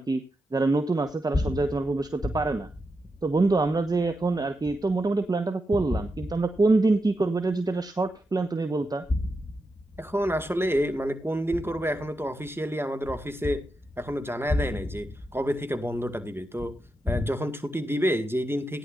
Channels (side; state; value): both; normal; correlation 0.87